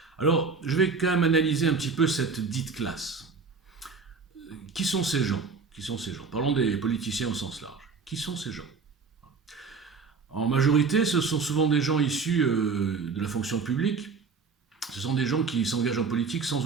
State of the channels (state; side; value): quieter; left; 4.9 dB